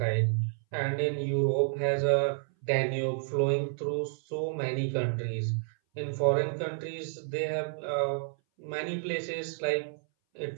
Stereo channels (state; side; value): silent; left; 58 dB below the other